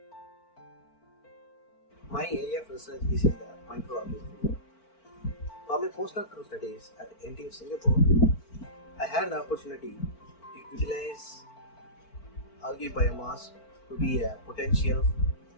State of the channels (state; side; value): late; right; 4.5 ms